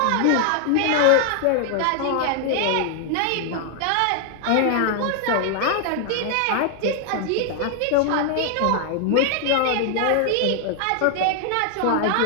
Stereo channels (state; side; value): different; both; correlation 0.00